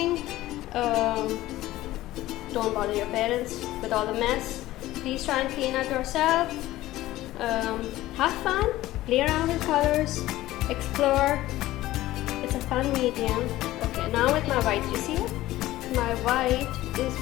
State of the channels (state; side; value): quieter; right; 16.1 dB